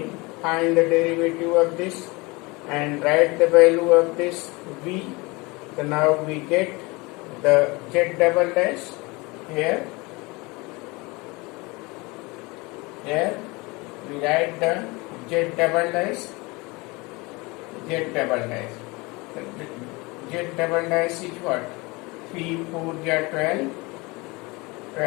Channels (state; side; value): quieter; right; 25.0 dB